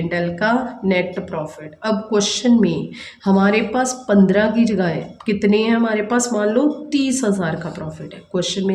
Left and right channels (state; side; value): identical; both; correlation 1.00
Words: एल का नेट प्रॉफिट। अब क्वेश्चन में हमारे पास 15 की जगह है, कितने हैं हमारे पास, मान लो 30,000 का प्रॉफिट है। क्वेश्चन